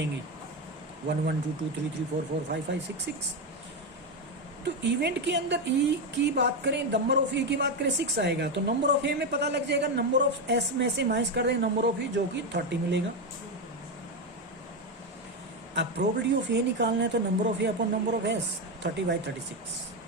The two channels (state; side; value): normal; both; correlation 0.11